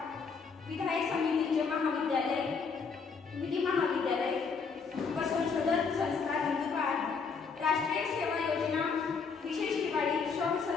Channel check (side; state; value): right; quieter; 5.3 dB